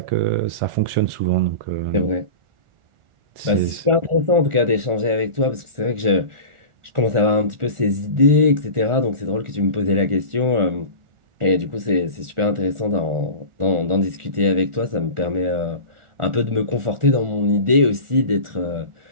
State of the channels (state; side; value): late; left; 1.4 ms